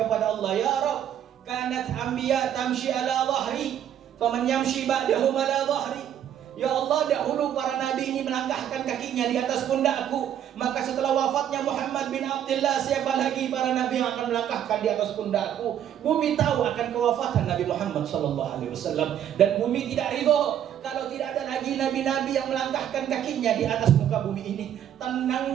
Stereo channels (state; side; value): quieter; left; 10.1 dB